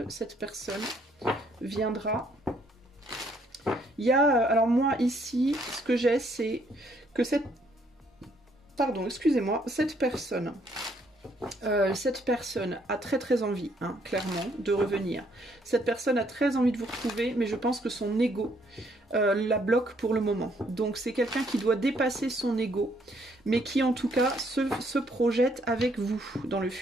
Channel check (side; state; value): both; normal; correlation 0.68